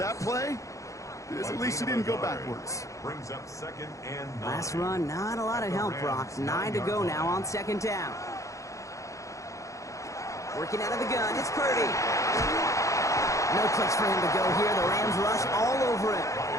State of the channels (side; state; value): right; late; 0.15 ms